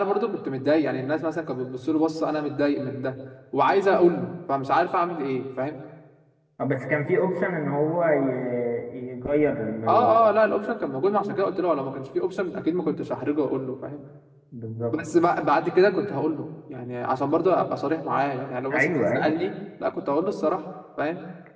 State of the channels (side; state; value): both; identical; correlation 1.00